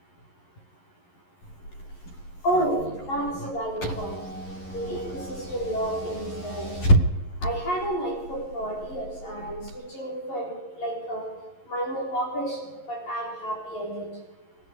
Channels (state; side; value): late; right; 11 ms